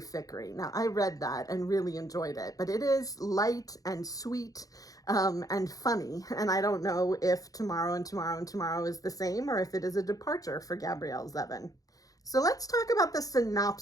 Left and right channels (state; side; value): late; right; 0.17 ms